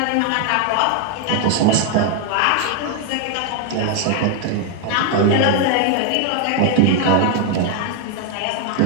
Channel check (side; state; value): both; different; correlation 0.01